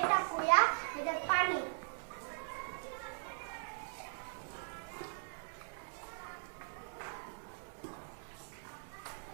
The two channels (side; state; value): left; silent; digital silence